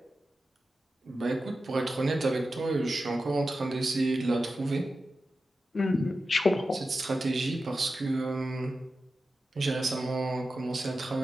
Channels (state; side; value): normal; both; correlation 0.92